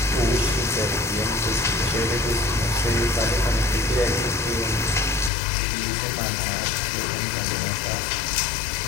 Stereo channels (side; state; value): right; drops out; at 5.3 s